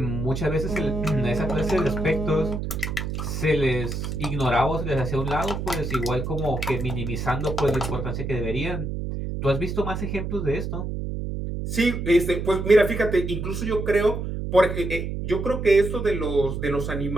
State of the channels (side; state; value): right; noise; hum, 4 dB below the sound